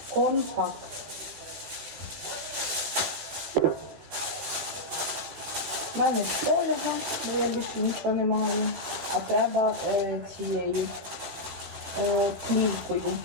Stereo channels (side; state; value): left; late; 15 ms